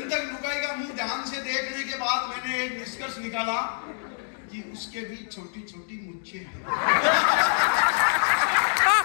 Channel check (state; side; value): silent; right; digital silence